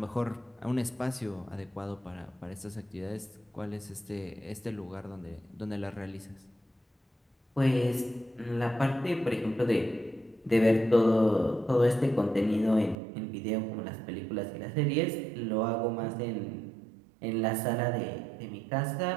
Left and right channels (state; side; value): drops out; left; at 13.0 s